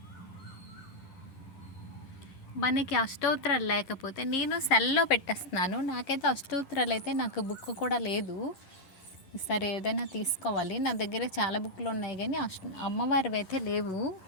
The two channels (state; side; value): late; right; 11 ms